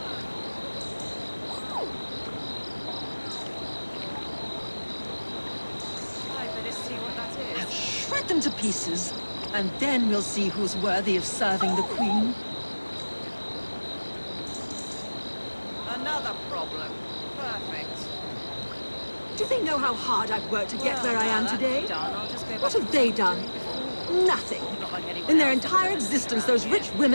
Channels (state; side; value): inverted; both; correlation -1.00